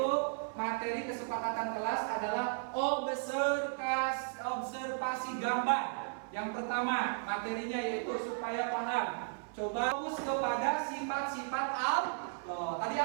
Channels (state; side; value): silent; left; 54 dB below the other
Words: materi kesepakatan kelas adalah observasi gambar. Yang pertama materinya yaitu supaya paham. Coba fokus kepada sifat-sifat Allah. Tadi